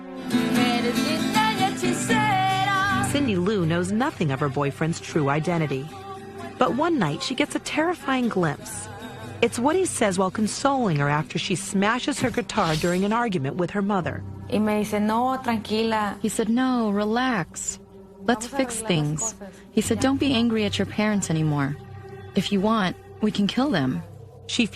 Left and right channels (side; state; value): both; identical; correlation 1.00